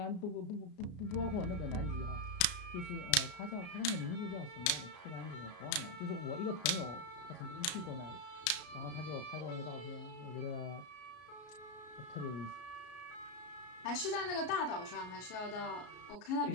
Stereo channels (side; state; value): right; late; 33 ms